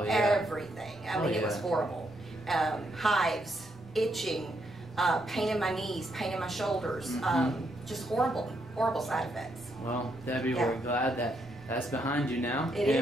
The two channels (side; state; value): both; normal; correlation 0.77